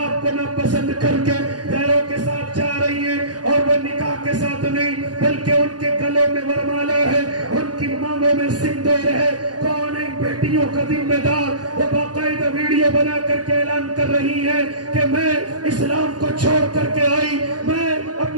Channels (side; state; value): left; late; 0.69 ms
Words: آپ کو ناپسند کر کے غیروں کے ساتھ جا رہی ہیں. اور وہ نکاح کے ساتھ نہیں بلکہ ان کے گلوں میں ورمالا ہے، ان کی مانگوں میں سندور ہے. کون ہے بیٹیوں کا ذمہ دار؟ وہ باقاعدہ ویڈیو بنا کر کے اعلان کر رہی ہے کہ میں اسلام کو چھوڑ کر کے آئی، میں